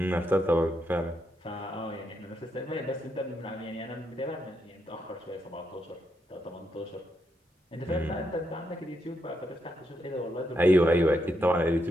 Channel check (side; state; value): both; normal; correlation 0.80